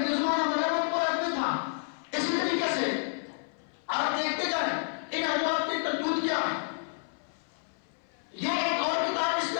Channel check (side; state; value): right; silent; 58 dB below the other